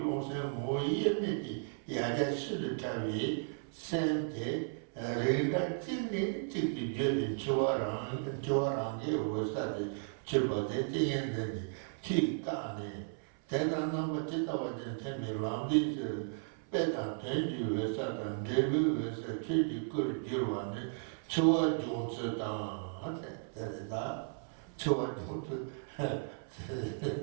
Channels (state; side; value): silent; left; 54 dB below the other